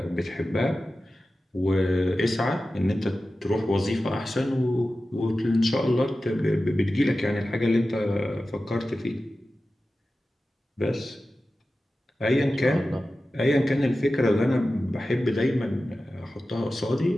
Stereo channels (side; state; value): both; normal; correlation 0.94